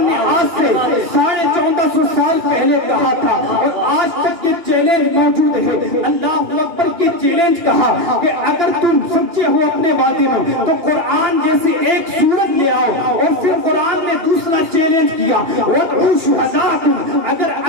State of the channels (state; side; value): late; left; 2.9 ms